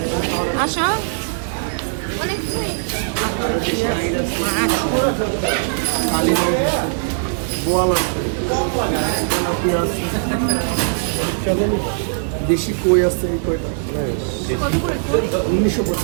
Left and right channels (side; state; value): left; silent; 59 dB below the other